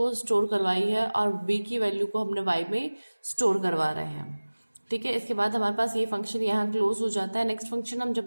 स्टोर करवाई है और b की वैल्यू को हमने y में स्टोर करवा रहे हैं, ठीक है। इसके बाद हमारे पास ये फंक्शन यहाँ क्लोज हो जाता है। नेक्स्ट फंक्शन हम जब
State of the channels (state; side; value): inverted; both; correlation -1.00